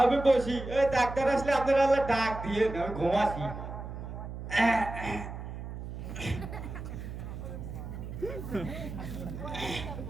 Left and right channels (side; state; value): right; noise; hum, 8 dB below the sound